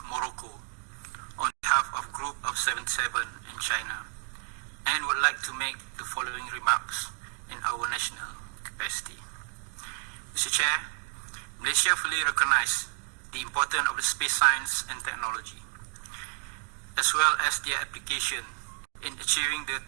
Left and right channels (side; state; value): left; quieter; 38.8 dB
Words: Morocco on behalf of Group of 77 in China, and would like to make the following remarks in our national capacity. Mr. Chair, Malaysia fully recognizes the importance of the space science and technology, as well as their application in achieving the